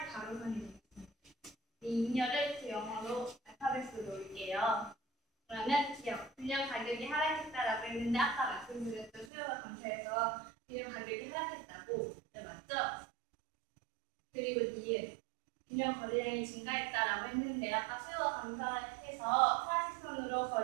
가로선이 되겠습니다. 이 인열을 그 영어로 알파벳으로 놓을게요. 그러면 균형 가격이 하락했다라고 했는데 아까 말씀드렸던 수요가 감소해서 균형 가격이 하락했다고 맞죠? 그리고 니은 균형 거래량이 증가했다라고 했는데 아까 수요가 감소해서 파란색 선으로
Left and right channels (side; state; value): left; drops out; at 9.3 s